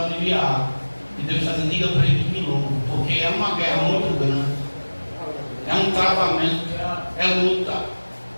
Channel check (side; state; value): both; inverted; correlation -1.00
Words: E Deus está dizendo, diga para ele que me louva, porque é uma guerra muito grande, é um travamento, é luta,